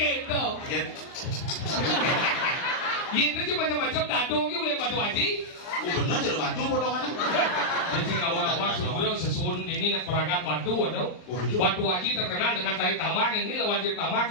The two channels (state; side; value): late; right; 39 ms